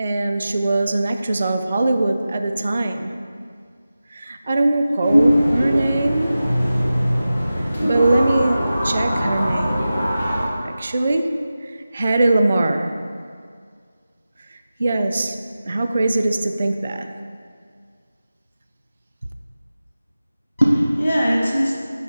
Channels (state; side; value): inverted; both; correlation -0.94